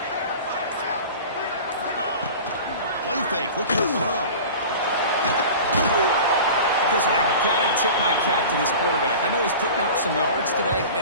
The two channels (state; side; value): inverted; both; correlation -0.37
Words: Play fake, looking to throw. Chris, I got to tip my cap to this quarterback. I know he's putting up some yards today,